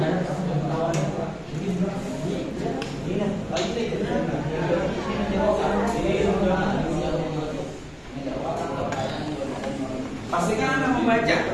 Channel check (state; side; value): identical; both; correlation 1.00